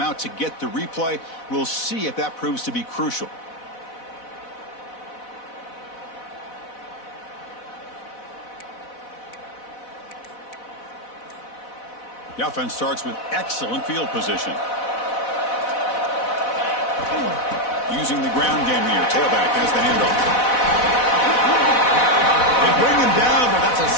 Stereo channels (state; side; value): late; right; 4.1 ms